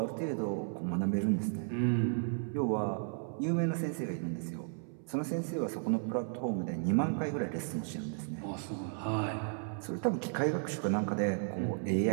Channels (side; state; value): left; silent; 55 dB below the other